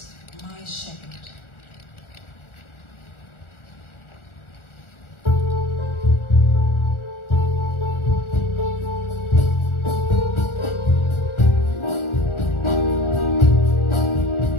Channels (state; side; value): late; right; 1.4 ms